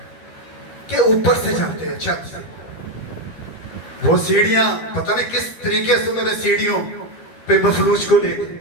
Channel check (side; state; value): right; late; 12 ms